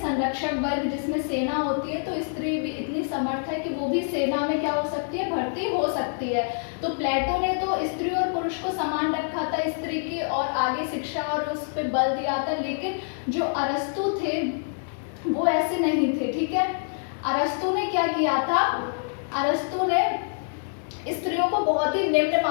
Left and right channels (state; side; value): silent; right; digital silence